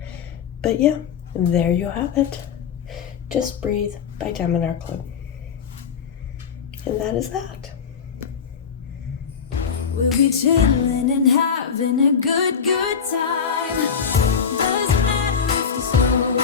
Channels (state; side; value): quieter; right; 6.7 dB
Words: But yeah, there you have it. Just Breathe by Diamond Art Club. And that is that. We'll be chilling and having a good time. Doesn't matter if the snow